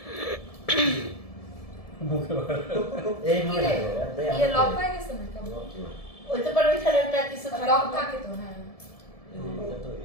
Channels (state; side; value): late; right; 1.7 ms